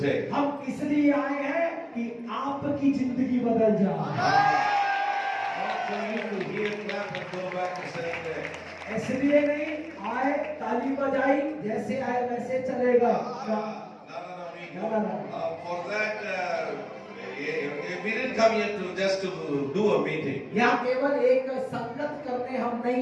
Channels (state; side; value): identical; both; correlation 1.00